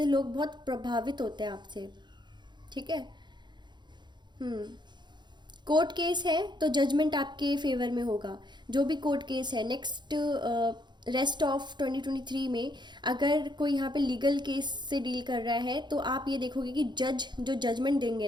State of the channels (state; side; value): late; left; 0.21 ms